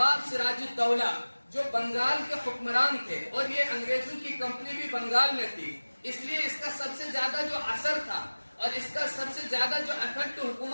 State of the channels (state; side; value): inverted; both; correlation -1.00